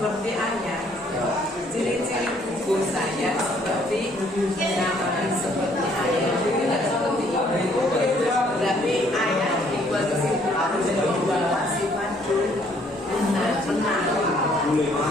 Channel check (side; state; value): both; normal; correlation 0.64